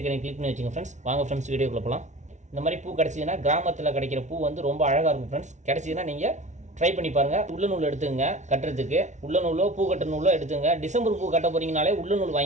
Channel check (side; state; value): left; late; 0.34 ms